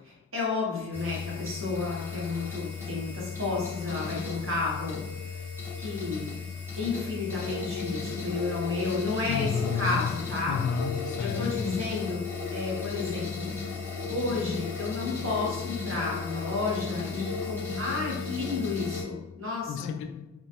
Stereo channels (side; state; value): right; quieter; 4.0 dB